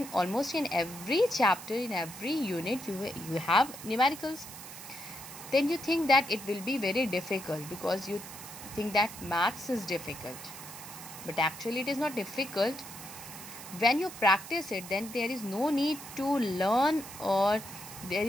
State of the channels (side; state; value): right; noise; hiss, 13 dB below the sound